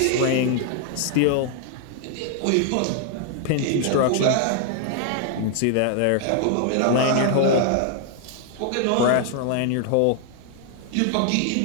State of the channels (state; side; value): different; both; correlation 0.00